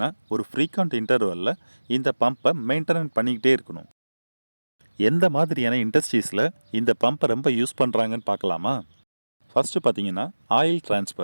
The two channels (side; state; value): both; inverted; correlation -1.00